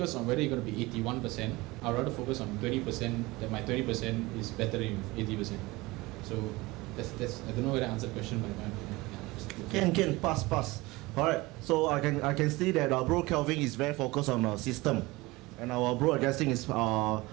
on whether you're going to be 81%, I'd rather focus on 20%. That my 20% is better than 80%. So that's I don't know whether I answered the question, but yeah. Can pass. Alright, so I can see that bro Kelvin is very focused on system, and our bro Augustine is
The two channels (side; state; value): left; quieter; 21.7 dB